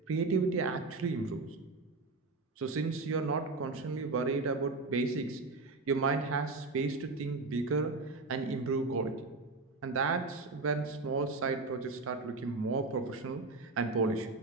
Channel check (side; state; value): left; quieter; 3.6 dB